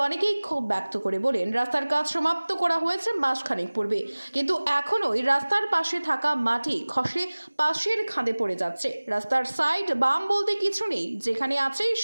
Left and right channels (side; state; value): both; inverted; correlation -1.00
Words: অনেকেই ক্ষোভ ব্যক্ত করে বলেন, রাস্তার কাজ সমাপ্ত করা হয়েছে মাসখানেক পূর্বে, কিন্তু এখনোই রাস্তার পাশে থাকা মাটি খসে পাশের খাদে পড়ে যাচ্ছে। রাস্তার সাইড বাম বলতে কিছু নেই, যেখানে আছে